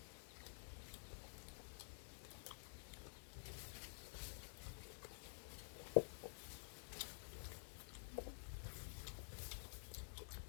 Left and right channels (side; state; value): right; silent; digital silence